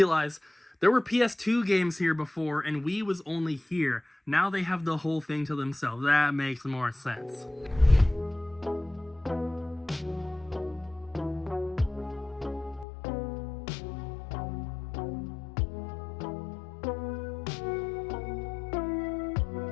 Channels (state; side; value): drops out; right; at 12.9 s